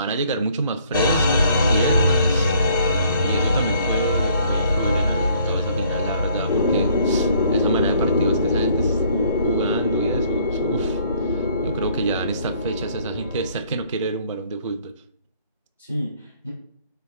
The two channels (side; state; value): both; inverted; correlation -0.61